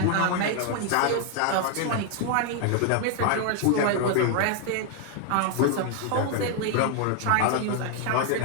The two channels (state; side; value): different; both; correlation 0.00